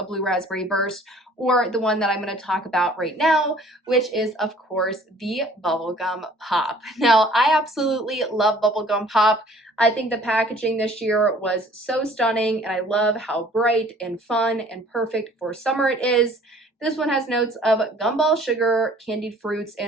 blue raspberry burst, or the one that I'm going to talk about right now, which is, of course, the bubblegum pop. Now, I absolutely love bubblegum pop. I think the packaging this year was so stunning, and I love how bright and fun and perfect for summer it is. This one has notes of gumball sugar, candied fruits,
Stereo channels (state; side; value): normal; both; correlation 0.54